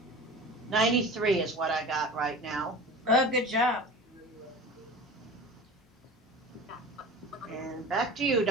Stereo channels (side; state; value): both; normal; correlation 0.36